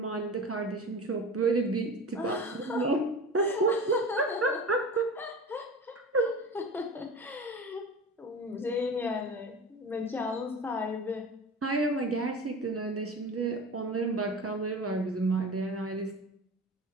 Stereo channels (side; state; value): both; normal; correlation 0.33